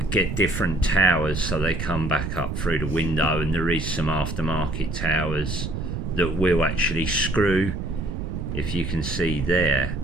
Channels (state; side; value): noise; right; rumble, 4 dB below the sound